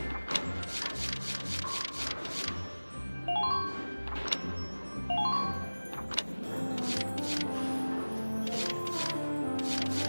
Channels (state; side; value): inverted; both; correlation -1.00